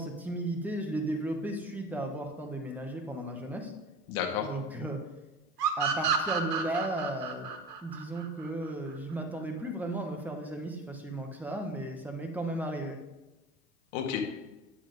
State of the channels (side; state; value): both; normal; correlation 0.35